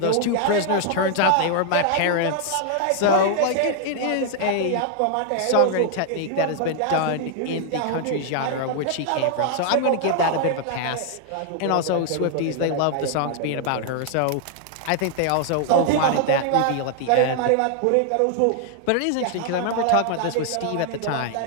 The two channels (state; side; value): different; both; correlation 0.00